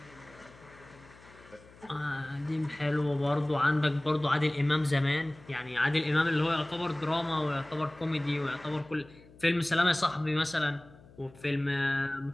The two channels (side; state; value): left; noise; hum, 23 dB below the sound